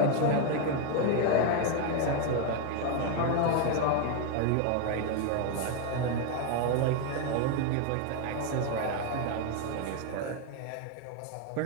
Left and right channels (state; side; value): different; both; correlation 0.01